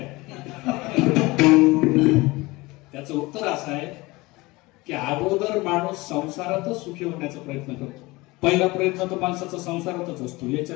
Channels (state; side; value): quieter; right; 22.1 dB